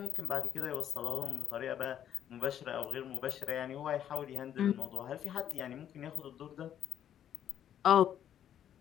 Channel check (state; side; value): quieter; right; 10.1 dB